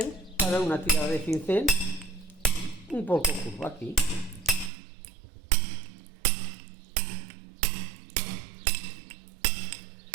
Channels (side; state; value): left; drops out; at 4.7 s